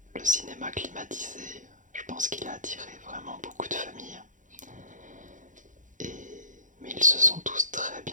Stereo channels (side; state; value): left; late; 0.37 ms